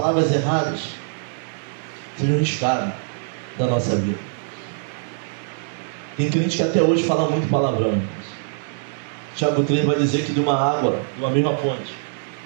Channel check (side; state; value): left; silent; digital silence